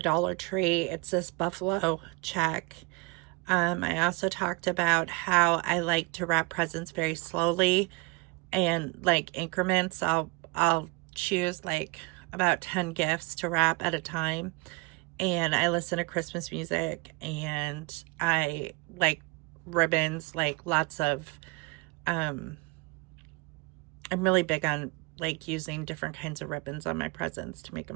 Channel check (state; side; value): quieter; left; 26.9 dB